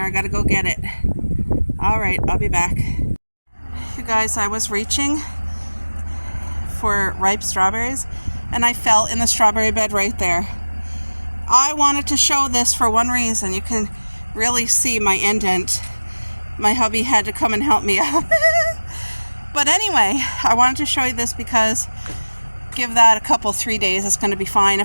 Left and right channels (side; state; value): both; inverted; correlation -1.00